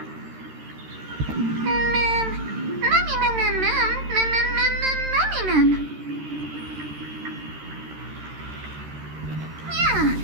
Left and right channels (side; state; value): left; late; 13 ms